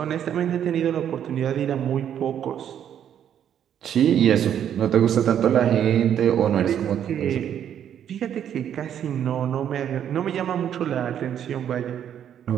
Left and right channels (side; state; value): left; quieter; 9.6 dB